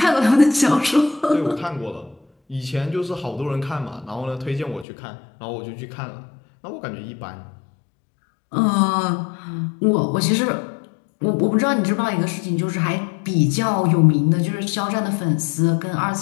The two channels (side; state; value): right; drops out; at 4.9 s